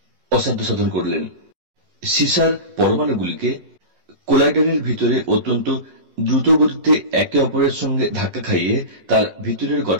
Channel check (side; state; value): left; late; 11 ms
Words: অসাধ্য সাধন করলেন। সীসার পরমাণুগুলিকে কোলাইডারের ভিতরে অত্যন্ত দ্রুত গতিতে একে অপরের সঙ্গে ধাক্কা খাইয়ে তার ভিতরের